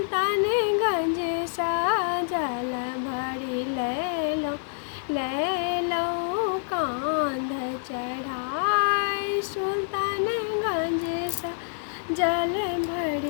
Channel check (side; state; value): right; silent; 56 dB below the other